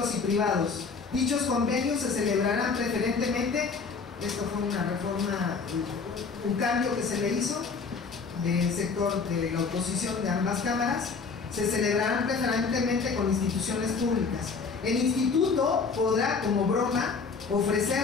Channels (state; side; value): quieter; right; 4.9 dB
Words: y privados. Dichos convenios se celebrarán preferentemente, esto fue una reforma, un cambio que se le hizo del sector de la oposición de ambas cámaras, se celebrarán preferentemente con instituciones públicas. El instituto podrá, como broma,